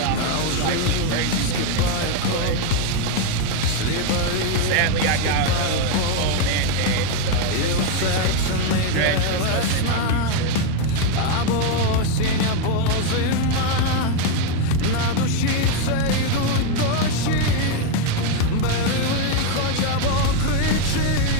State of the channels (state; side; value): different; both; correlation 0.02